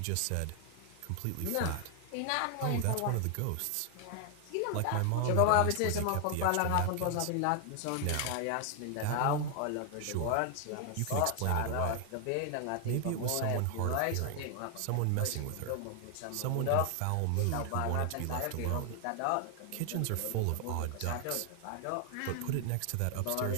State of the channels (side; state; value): both; different; correlation 0.00